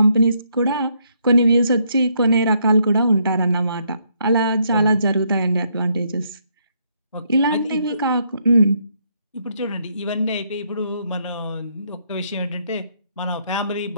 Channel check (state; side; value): inverted; both; correlation -0.73